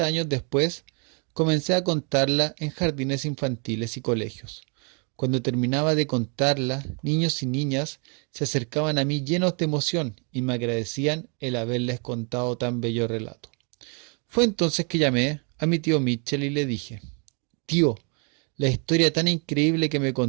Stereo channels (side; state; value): left; quieter; 36.6 dB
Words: años después, comencé a contarla en jardines infantiles y colegios. Cuando terminaba de contarla, niños y niñas se acercaban a mí llenos de emoción y me agradecían el haberles contado tan bello relato. Fue entonces que llamé a mi tío Mitchell y le dije: Tío, la historia tan increíble que me